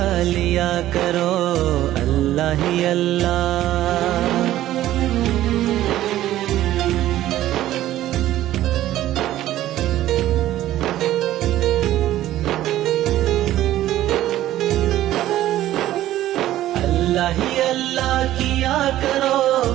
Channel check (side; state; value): left; quieter; 13.9 dB